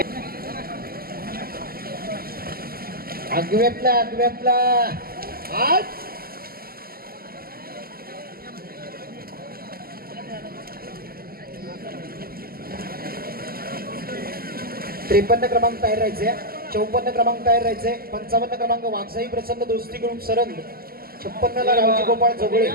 अगव्यातला आज 53 क्रमांक तयार राहायचे. 54 क्रमांक तयार राहायचे. 55 क्रमांक वाघसाई प्रसन्न दोस्ती ग्रुप सरंद. 56 ला रावजी गोपाळ जोगळे.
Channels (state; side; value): late; left; 0.43 ms